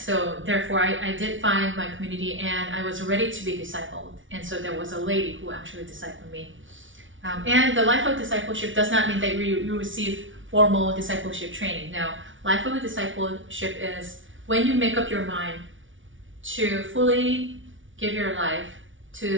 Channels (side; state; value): left; late; 0.56 ms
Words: therefore I did find my community, and I was ready to be discipled. And so there was a lady who actually discipled me. And the life of discipleship does not mean that you receive formal discipleship training. No, life of a discipleship is when you make up your mind to fully give your life